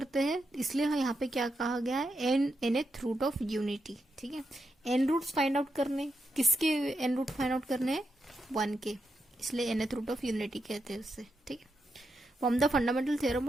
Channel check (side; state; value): both; normal; correlation 0.84